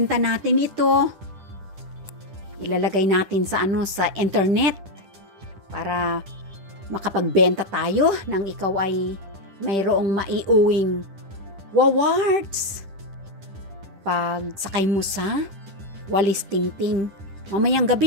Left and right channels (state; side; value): late; left; 10 ms